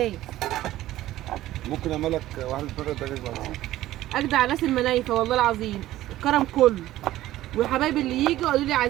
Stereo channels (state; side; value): quieter; left; 14.9 dB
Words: ممكن اعمل لك واحده بره دجاج بعد. اجدع ناس المنايفه والله العظيم. الكرم كله. وحبايبي اللي يجوا قالوا لي